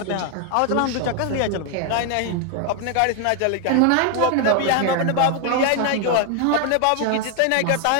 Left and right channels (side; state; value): both; different; correlation 0.00